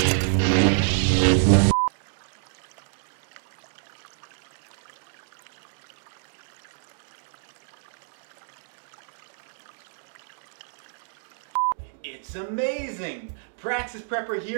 It's amazing! Praxis Prepper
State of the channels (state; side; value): silent; left; digital silence